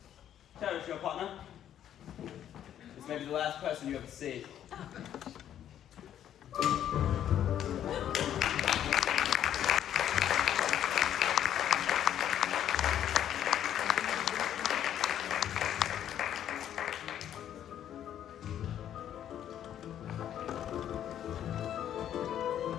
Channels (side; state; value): right; quieter; 10.5 dB